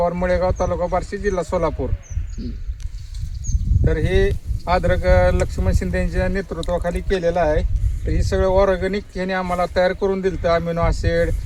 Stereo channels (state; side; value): identical; both; correlation 1.00